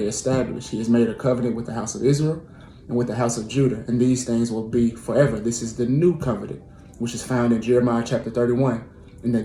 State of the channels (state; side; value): identical; both; correlation 1.00